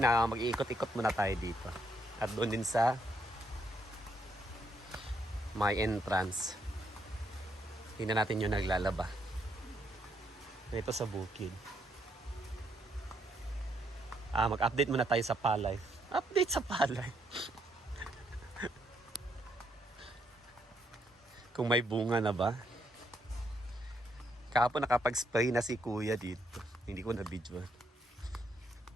mag-iikot-ikot muna tayo dito. At doon din sa my entrance. Tingnan natin yung naglalaba. Ito sa bukid. Mag-update muna tayo sa palay. Update sa palay. Kung may bunga na ba? Kahapon nakapag-spray na si kuya dito. Hindi ko na-videoan.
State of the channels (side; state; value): both; normal; correlation 0.74